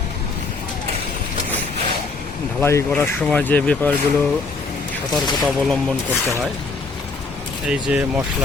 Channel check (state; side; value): quieter; right; 4.0 dB